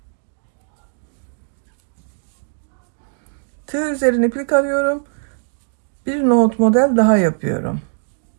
Tığ üzerine iplik alıyorum. Bir nohut model daha yapıyorum.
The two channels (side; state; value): left; silent; digital silence